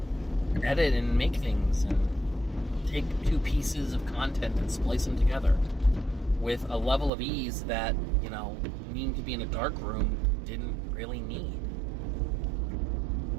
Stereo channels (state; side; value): drops out; left; at 7.1 s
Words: edit and make things and take two pieces of content and splice them together with a level of ease that, needing to be in a dark room didn't really need.